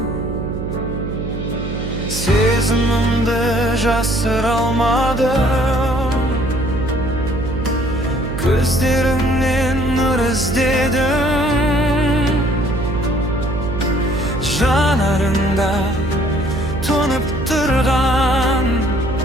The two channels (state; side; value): noise; right; hum, 5 dB below the sound